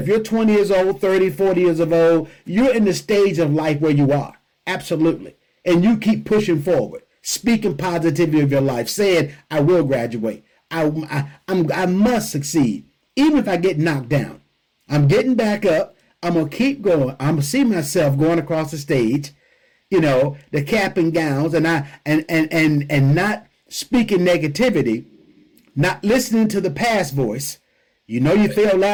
you're 20 years old, 30, 40 years of old, you're in the stage of life where you are. Absolutely. And you keep pushing forward, speaking positivity of your life, saying, I will graduate. I must succeed. Even if I get knocked down, I'm getting back up. I'm going to keep going. I'm going to see myself going across the stage, the cap and gowns, and not speaking negativity, not listening to the past voice. You failed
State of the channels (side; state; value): both; identical; correlation 1.00